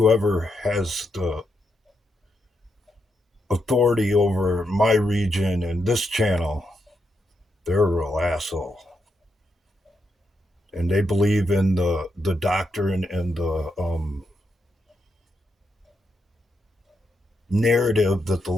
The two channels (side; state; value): both; normal; correlation 0.82